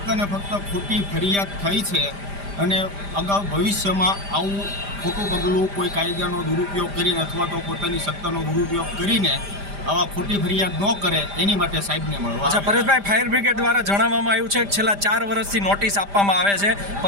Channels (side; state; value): left; late; 5.0 ms